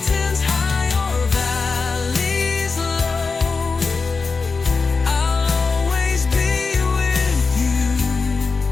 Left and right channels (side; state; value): right; quieter; 4.5 dB